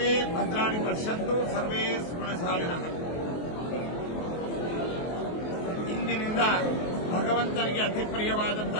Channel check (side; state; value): right; late; 23 ms